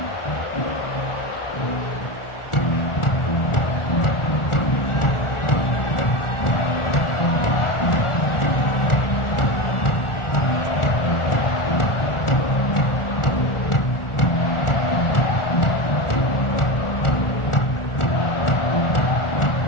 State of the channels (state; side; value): late; right; 1.4 ms